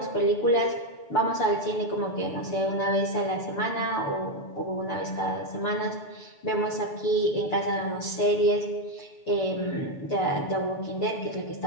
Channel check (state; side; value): late; right; 6.8 ms